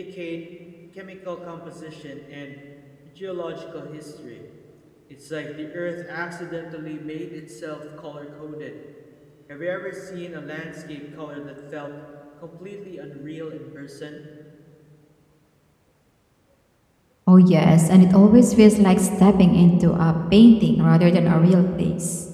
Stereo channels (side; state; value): both; identical; correlation 1.00